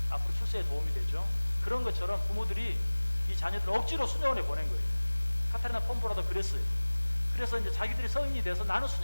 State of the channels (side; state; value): both; inverted; correlation -1.00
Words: 앞으로 출세에 도움이 되죠. 그런 것처럼 부모들이 이 자녀들을 억지로 수녀원에 보낸 거예요. 카타리나 폼보라도 그랬어요. 그래서 이제 자기들이 성인이 돼서 나는